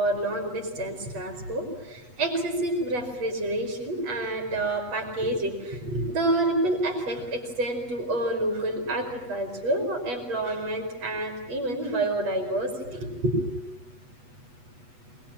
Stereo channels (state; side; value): late; left; 8.1 ms